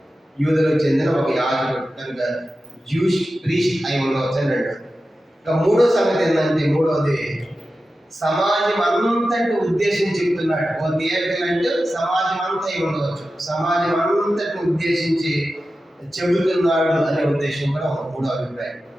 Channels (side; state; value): both; normal; correlation 0.93